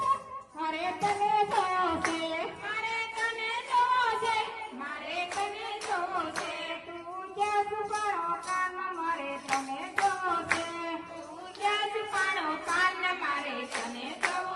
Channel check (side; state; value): both; identical; correlation 1.00